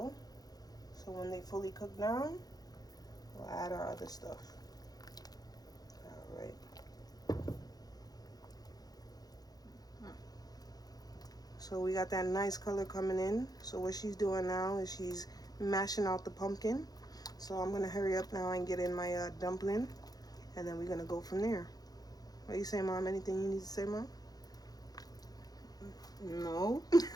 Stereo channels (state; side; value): late; right; 0.19 ms